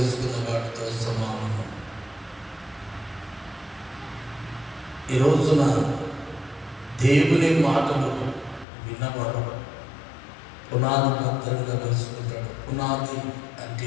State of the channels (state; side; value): drops out; right; at 8.7 s